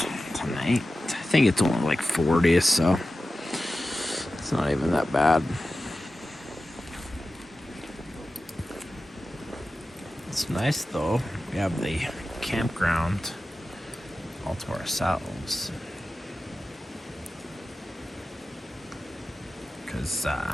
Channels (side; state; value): both; normal; correlation 0.93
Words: tonight. I think it's only like 40, so it's not even that bad. It's nice though. We have the campground all to ourselves. Because